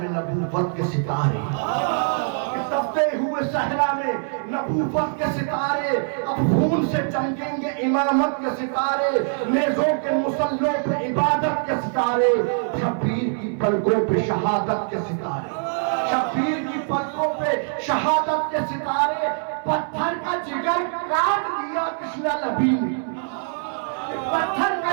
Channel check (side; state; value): left; silent; 60 dB below the other